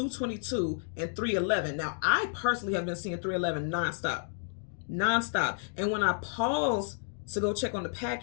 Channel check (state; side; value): silent; right; digital silence